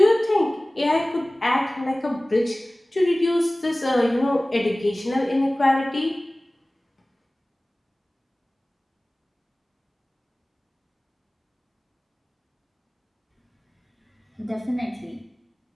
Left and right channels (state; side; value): normal; both; correlation 0.98